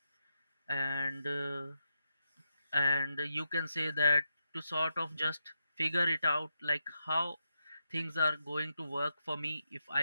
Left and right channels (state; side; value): inverted; both; correlation -0.85